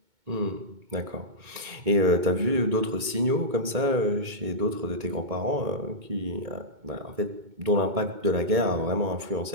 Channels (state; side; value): late; left; 2.2 ms